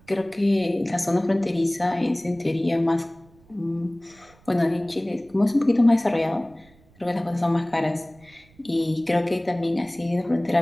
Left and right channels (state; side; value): noise; right; rumble, 29 dB below the sound